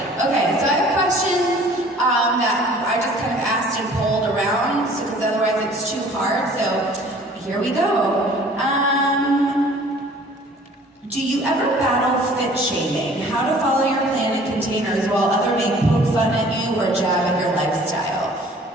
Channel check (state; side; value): normal; both; correlation 0.51